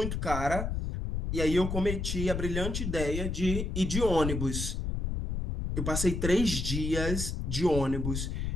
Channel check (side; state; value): left; noise; rumble, 2 dB below the sound